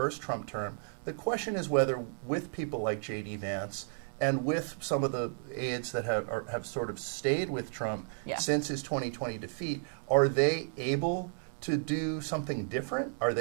Trump term. The question is whether, with people like J.D. Vance and with some of the aides that have sort of stayed with Trump since his 2020 defeat, are they able to do something different? Are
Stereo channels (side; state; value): left; silent; digital silence